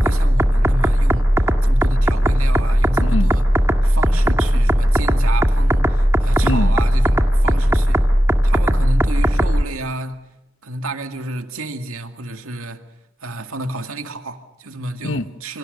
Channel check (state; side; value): normal; both; correlation 0.92